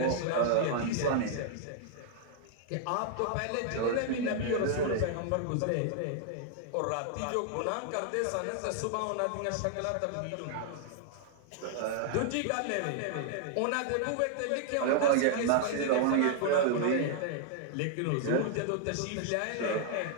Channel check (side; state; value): both; different; correlation 0.00